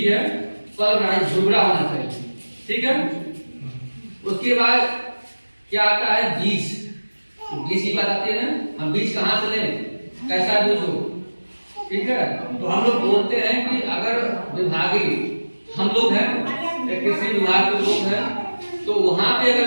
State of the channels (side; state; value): both; inverted; correlation -1.00